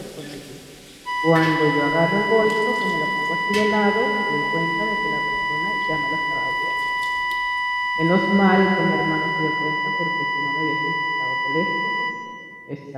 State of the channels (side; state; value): both; identical; correlation 1.00